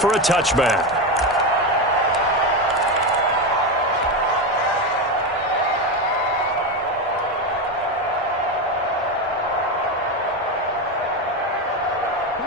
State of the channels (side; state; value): both; normal; correlation 0.14